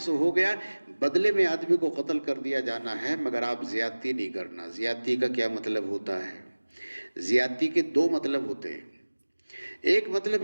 ہو گیا، بدلے میں آدمی کو قتل کر دیا جانا ہے، مگر آپ زیادتی نہیں کرنا۔ زیادتی کا کیا مطلب ہوتا ہے؟ زیادتی کے دو مطلب ہوتے ہیں۔ ایک مطلب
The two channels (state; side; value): inverted; both; correlation -1.00